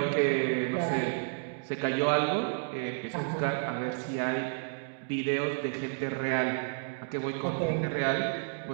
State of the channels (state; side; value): silent; left; digital silence